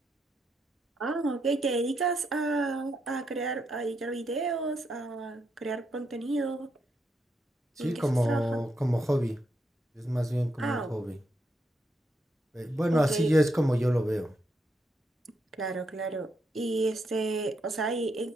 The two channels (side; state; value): both; normal; correlation 0.80